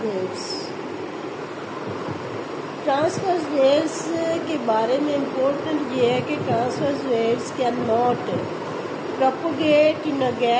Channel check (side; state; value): both; identical; correlation 1.00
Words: waves. Transverse waves के बारे में important ये है कि transverse waves can not propagate in a